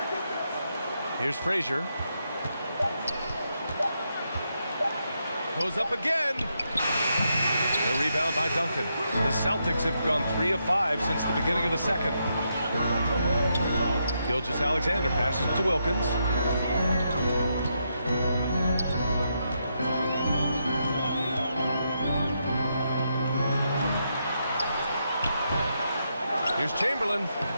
Here's Frazier. Goes up again. The rebound by Duncan. The Celtics have gone 3 of 5 since the beginning of the second. Gilgeous-Alexander passes to Wilkins. Here's Chamberlain.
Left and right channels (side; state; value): both; inverted; correlation -0.81